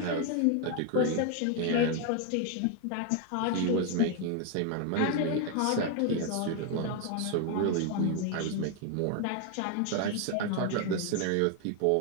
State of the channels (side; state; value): both; different; correlation 0.01